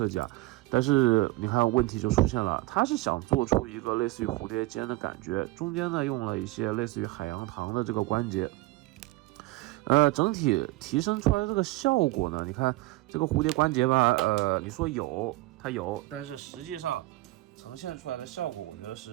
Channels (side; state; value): left; quieter; 19.8 dB